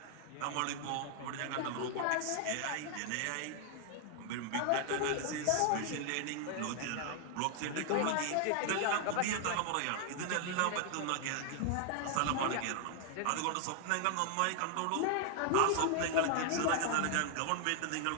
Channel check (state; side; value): different; both; correlation 0.00